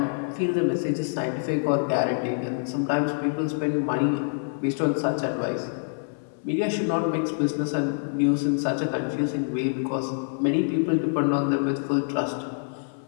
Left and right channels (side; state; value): right; silent; 61 dB below the other